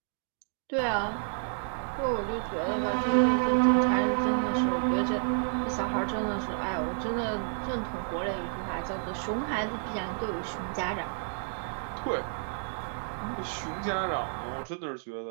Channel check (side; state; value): left; silent; digital silence